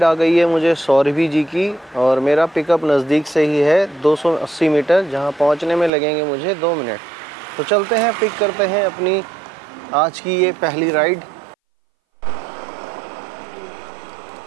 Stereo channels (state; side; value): drops out; left; at 5.9 s